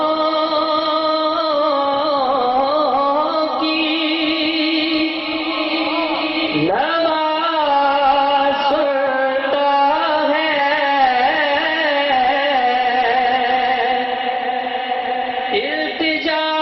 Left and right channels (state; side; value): identical; both; correlation 1.00